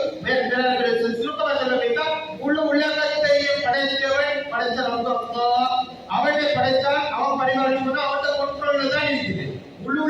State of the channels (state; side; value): identical; both; correlation 1.00